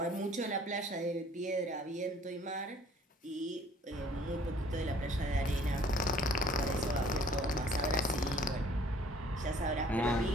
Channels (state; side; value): normal; both; correlation 0.56